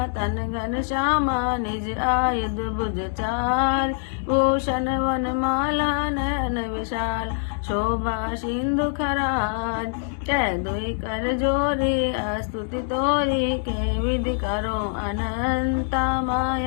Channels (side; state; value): right; silent; digital silence